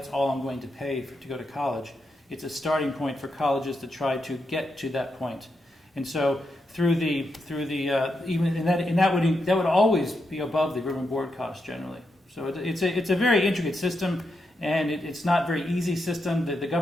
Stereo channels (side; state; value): both; normal; correlation 0.84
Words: all I'm going to pay to go to college. It's a starting point for colleges to try to get to that point. And so that would always be above the room and board cost generally. So it's a very intricate system, and it's not a very easy system. The